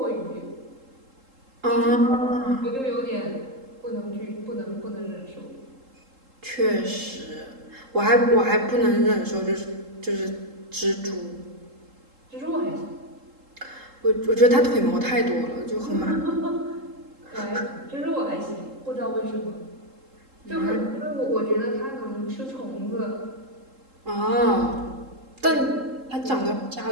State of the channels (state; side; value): late; left; 3.7 ms